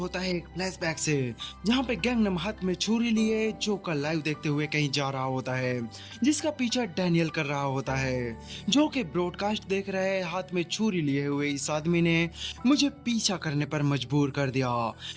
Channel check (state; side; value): identical; both; correlation 1.00